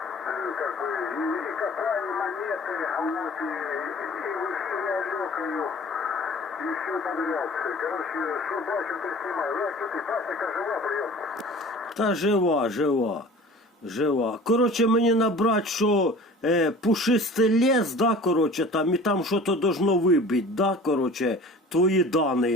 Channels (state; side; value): normal; both; correlation 0.43